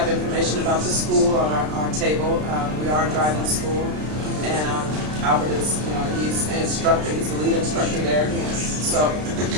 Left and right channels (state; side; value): late; left; 33 ms